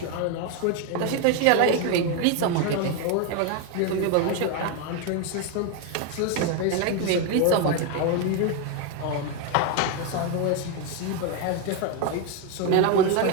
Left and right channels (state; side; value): different; both; correlation 0.02